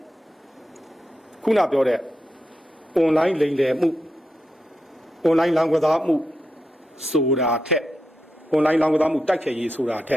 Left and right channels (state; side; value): normal; both; correlation 0.86